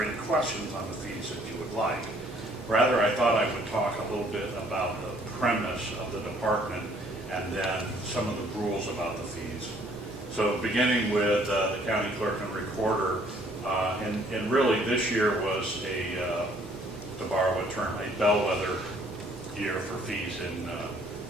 any questions on the fees that you would like. Rather, I thought I would talk a little bit about the premise of the department and then some of the rules about the fees. So beginning with the county clerk and recorder, and really this year was to borrow a term, a bellwether year for fees in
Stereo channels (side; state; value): both; normal; correlation 0.61